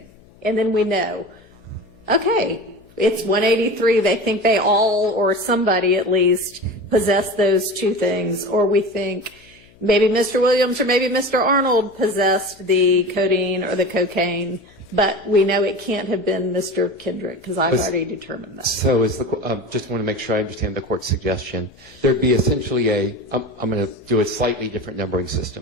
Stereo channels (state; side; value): noise; left; hum, 28 dB below the sound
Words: And then we know, okay, it's 183. They think they all, or somebody at least, possessed those two things. Or we think maybe Mr. Williams or maybe Mr. Arnold possessed the codeine or the cocaine. But we know it can't have been Mr. Kendrick, because I've already determined that. So just want to make sure I understand the court's suggestion. There'd be essentially I'm going to do a slightly different numbering